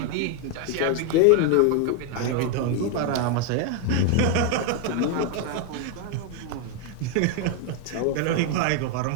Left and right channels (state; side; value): different; both; correlation 0.01